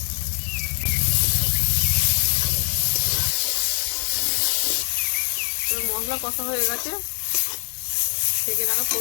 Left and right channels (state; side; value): silent; right; digital silence